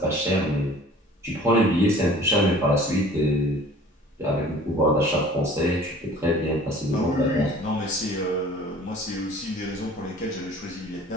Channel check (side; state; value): both; normal; correlation 0.48